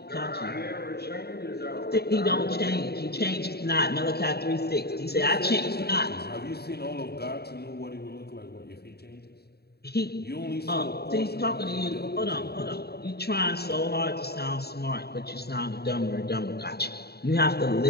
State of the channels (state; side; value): late; right; 0.47 ms